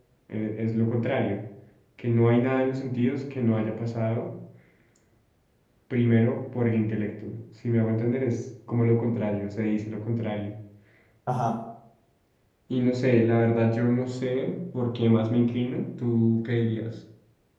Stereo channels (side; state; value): both; identical; correlation 1.00